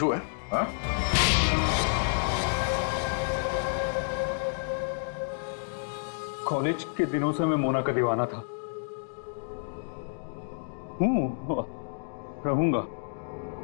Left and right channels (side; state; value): right; silent; digital silence